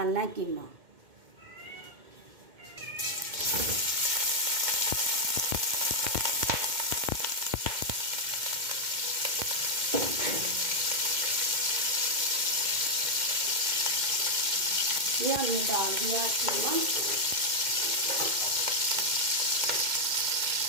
है कीमा। ये हमने डाल दिया कीमा।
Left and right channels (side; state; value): left; late; 2.1 ms